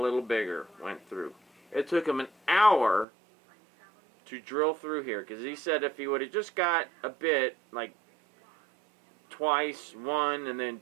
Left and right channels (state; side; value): drops out; left; at 3.1 s